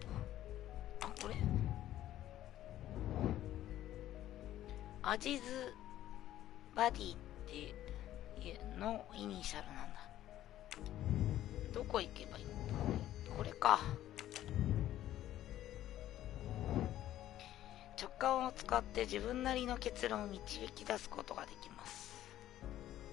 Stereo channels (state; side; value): quieter; right; 13.1 dB